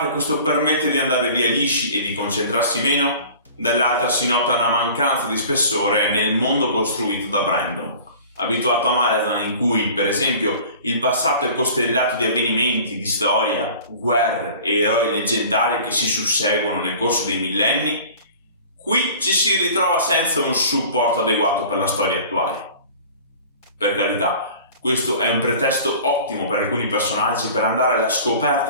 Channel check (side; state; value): both; inverted; correlation -0.44